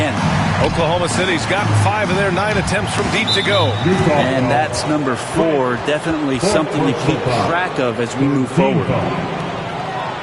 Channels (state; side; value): identical; both; correlation 1.00